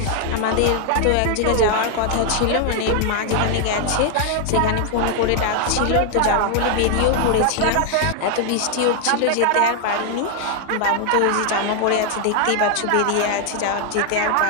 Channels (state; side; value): different; both; correlation 0.00